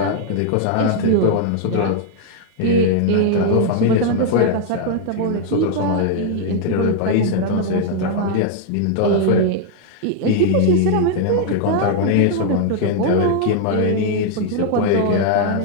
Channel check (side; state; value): both; different; correlation 0.00